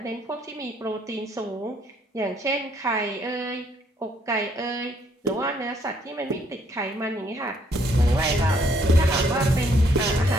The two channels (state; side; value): normal; both; correlation 0.68